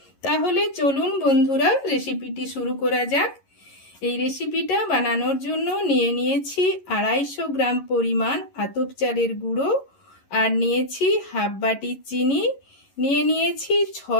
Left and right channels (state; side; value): late; right; 11 ms